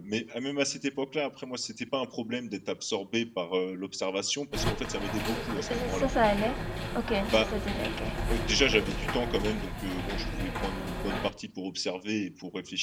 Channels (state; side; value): identical; both; correlation 1.00